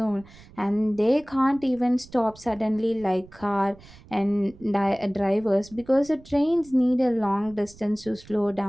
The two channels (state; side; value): noise; right; rumble, 23 dB below the sound